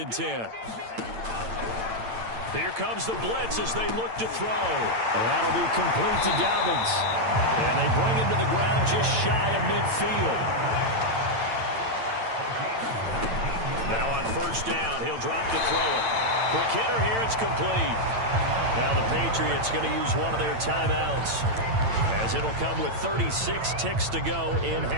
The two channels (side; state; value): left; late; 8.9 ms